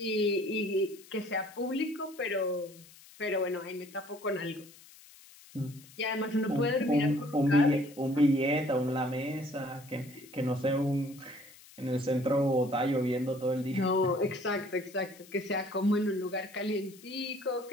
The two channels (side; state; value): left; noise; hiss, 22 dB below the sound